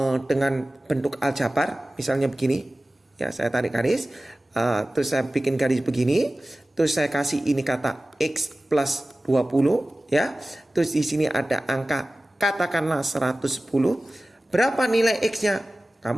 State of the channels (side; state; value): both; normal; correlation 0.97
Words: dengan bentuk aljabar, misalnya begini. Ya, saya tarik garis, terus saya bikin garis begini, terus saya kasih ini kata X plus 20, ya. Terus di sini ada angka katakanlah 110. Berapa nilai X-nya?